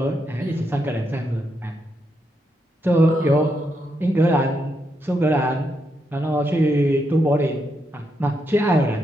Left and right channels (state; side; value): normal; both; correlation 0.81